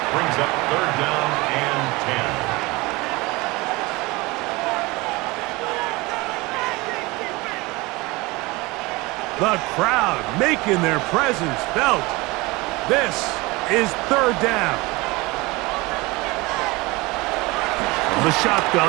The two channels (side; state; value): left; quieter; 23.1 dB